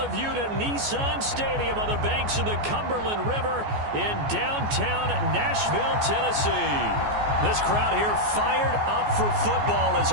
you to Nissan Stadium on the banks of the Cumberland River in downtown Nashville, Tennessee. This crowd here fired up for football as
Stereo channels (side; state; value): left; late; 14 ms